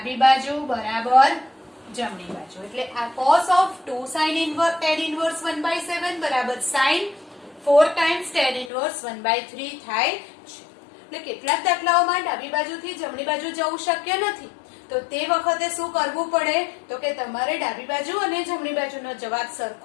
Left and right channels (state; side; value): drops out; right; at 8.7 s